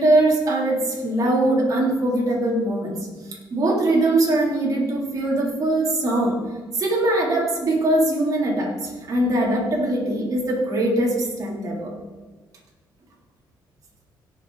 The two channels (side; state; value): both; normal; correlation 0.66